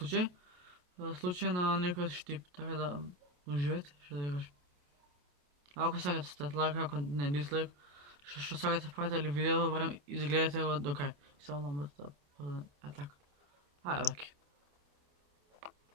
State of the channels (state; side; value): late; left; 28 ms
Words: случај на некој штип, така да уживете, што да ви кажам. Ако сакате ставате лайк, ако не дислайк, што сакате правите ли видео, барем изгледате го до крај. Само ламбата, така. Ајде баки.